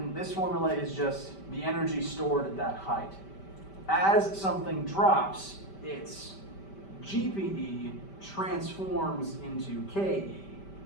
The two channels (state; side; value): late; right; 5.1 ms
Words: this formula is just the energy stored at that height. As something drops, its GPE transforms into KE.